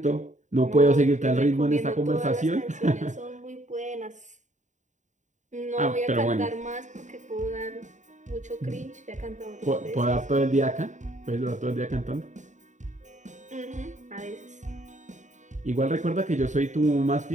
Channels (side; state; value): left; late; 0.35 ms